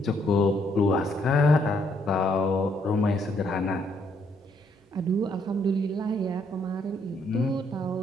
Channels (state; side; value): normal; both; correlation 0.71